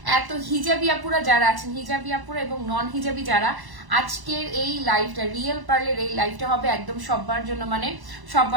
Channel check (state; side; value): late; left; 1.0 ms